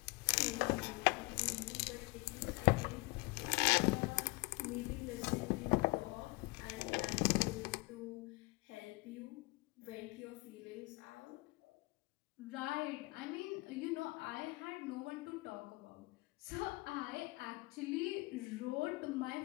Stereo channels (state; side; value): quieter; right; 24.7 dB